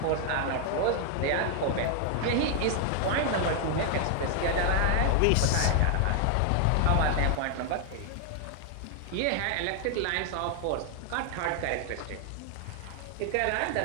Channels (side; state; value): both; different; correlation 0.00